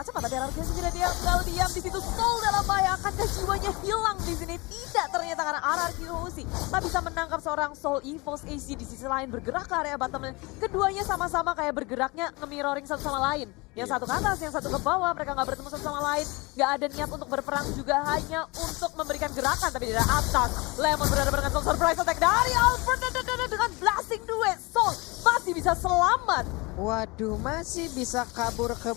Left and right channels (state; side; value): quieter; right; 25.5 dB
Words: cepat. Tapi RRQ sendiri dia nggak diam di situ. Soul dalam bahaya, akankah jiwanya hilang di sini? Tidak, ternyata karena RRQ Hoshi tak bisa menangkap seorang Soul EVOS AC di sisi lain bergerak ke area bottom lane. Keduanya sama-sama kayak bergeraknya nge-mirroring satu sama lain. Yang satu ke atas, yang satu ke bawah, mereka nggak bertemu satu sama lain. Nggak ada niat untuk berperang juga, hanya untuk memberikan gerakan. Tapi di atas, Lemon berhadapan dengan Soul Surprise Attack dari Albert dengan blasting duet. Soul masih bisa selamat. Waduh, masih bisa kabur ke